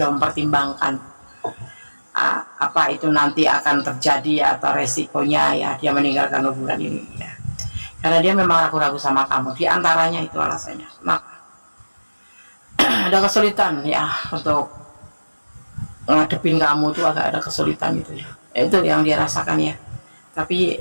mempertimbangkan apa itu nanti akan terjadi atau resikonya, ya, dia meninggalkan hubungan ini, ya. Karena dia memang ragu-ragu sama kamu. Diantaranya itu alasannya. Nah, ada kesulitan, ya, untuk ngadepin kamu tuh agak ada kesulitan gitu, ya. Itu yang dia rasakan, ya.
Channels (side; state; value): both; inverted; correlation -1.00